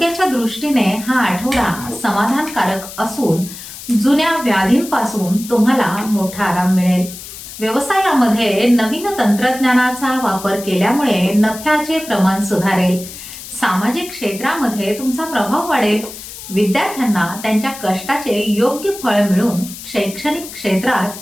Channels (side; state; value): left; noise; hiss, 13 dB below the sound